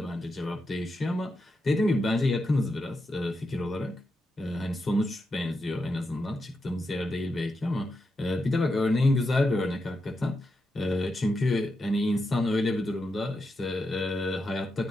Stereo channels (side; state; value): both; normal; correlation 0.86